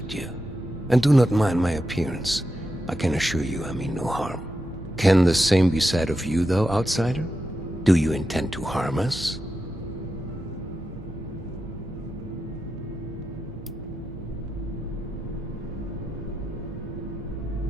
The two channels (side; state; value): both; normal; correlation 0.88